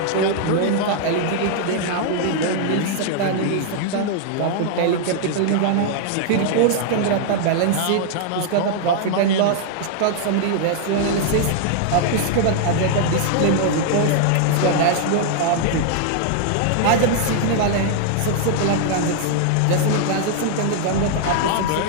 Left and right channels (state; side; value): different; both; correlation -0.01